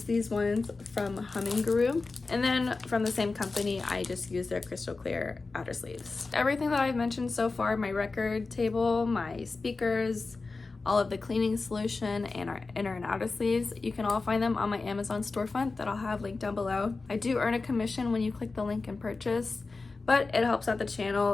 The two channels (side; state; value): right; quieter; 3.8 dB